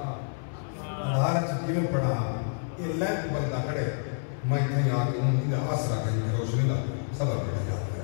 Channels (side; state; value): right; silent; 59 dB below the other